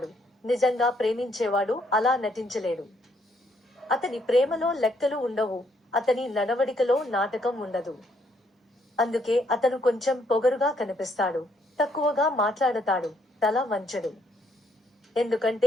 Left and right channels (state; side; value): normal; both; correlation 0.71